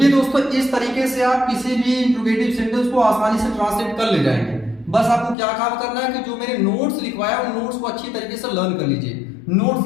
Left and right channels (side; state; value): right; drops out; at 5.4 s